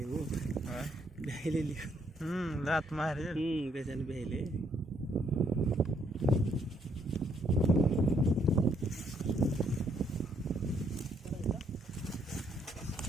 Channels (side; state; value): both; normal; correlation 0.71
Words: हो बहिले लात मारे कशाने बहिले